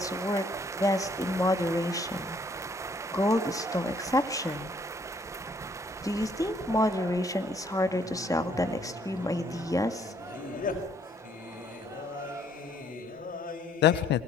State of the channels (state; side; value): normal; both; correlation 0.64